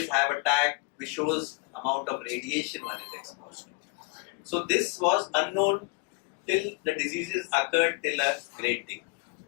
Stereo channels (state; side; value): quieter; right; 27.9 dB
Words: have a tag which shows amount of radiation one is exposed to. So this was unknown till the diseases occurred till a great degree.